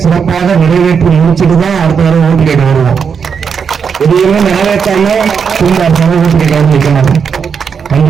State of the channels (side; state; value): left; quieter; 6.5 dB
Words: சிறப்பாக நிறைவேற்றி முடிச்சுட்டு தான் அடுத்த தடவை ஓட்டு கேட்க வருவோம். எதையுமே நிறைவேற்றாம ஓட்டு கேட்க வைக்க மாட்டோம்.